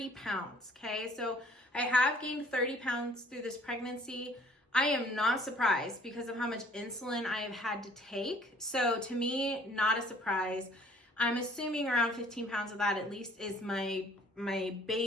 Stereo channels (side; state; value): both; normal; correlation 0.57